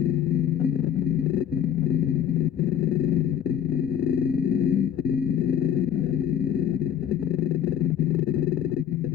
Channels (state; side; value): quieter; right; 9.5 dB